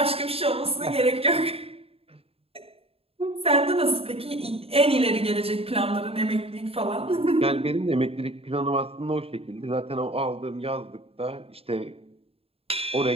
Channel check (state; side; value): late; left; 0.28 ms